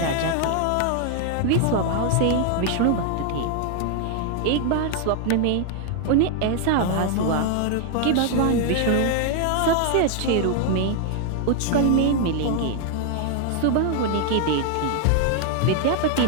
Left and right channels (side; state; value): both; different; correlation 0.00